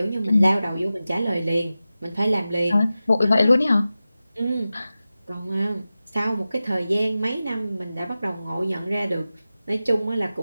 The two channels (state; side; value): inverted; both; correlation -0.95